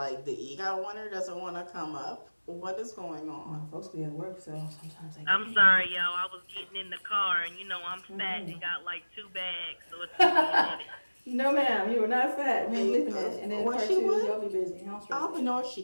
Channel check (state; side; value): inverted; both; correlation -1.00